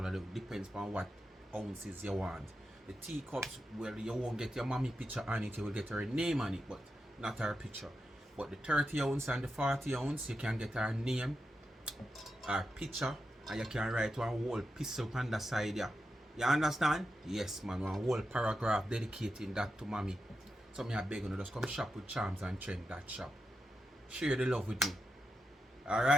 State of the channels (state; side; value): normal; both; correlation 0.88